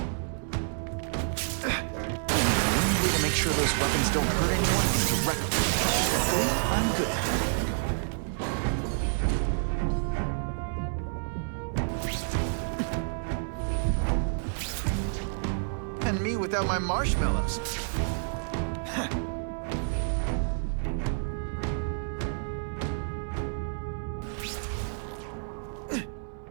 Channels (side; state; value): left; silent; 58 dB below the other